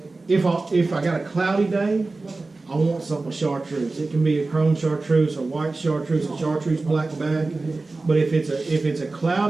if I got a cloudy day, I want something with chartreuse. It can be a chrome chartreuse, a white chartreuse, a chartreuse black back. But if it's a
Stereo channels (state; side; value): quieter; left; 3.4 dB